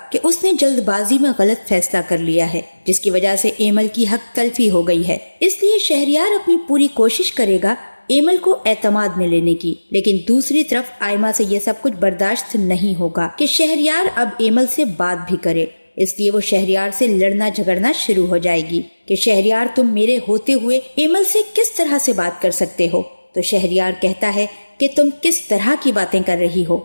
کہ اس نے جلد بازی میں غلط فیصلہ کر لیا ہے، جس کی وجہ سے ایمل کی حق تلفی ہو گئی ہے۔ اس لیے شہریار اپنی پوری کوشش کرے گا ایمل کو اعتماد میں لینے کی، لیکن دوسری طرف آئمہ سے یہ سب کچھ برداشت نہیں ہوگا کہ شہریار اب ایمل سے بات بھی کرے۔ اس لیے وہ شہریار سے لڑنا جھگڑنا شروع ہو جائے گی کہ شہریار تم میرے ہوتے ہوئے ایمل سے کس طرح سے بات کر سکتے ہو؟ تو شہریار کہتا ہے کہ تم کس طرح کی باتیں کر رہی ہو؟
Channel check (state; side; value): inverted; both; correlation -1.00